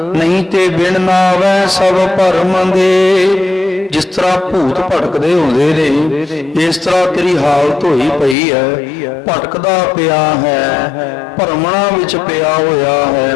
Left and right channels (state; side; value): drops out; right; at 8.3 s